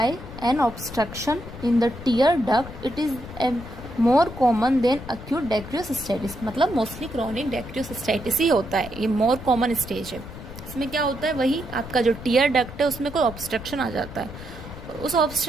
an obstruction in the tear duct, it is more common than acute dacryocystitis, मतलब मोस्टली क्रोनिक डेक्रियोसिस्टाइटिस ही होता है, ये मोर कॉमन स्टेज है। इसमें क्या होता है, वही आपका जो टीयर डक्ट है उसमें कोई ऑब्स्ट्रक्शन आ जाता है, उस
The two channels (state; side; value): noise; left; rumble, 13 dB below the sound